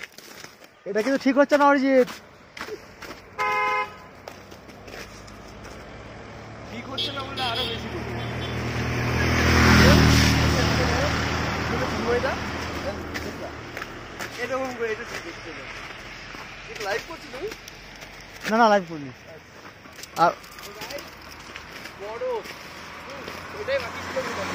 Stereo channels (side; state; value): both; identical; correlation 1.00